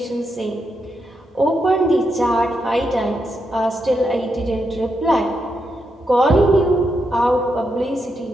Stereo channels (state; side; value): normal; both; correlation 0.83